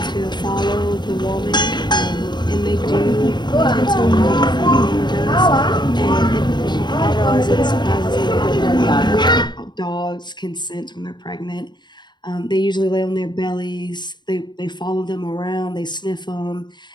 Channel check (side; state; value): right; late; 0.21 ms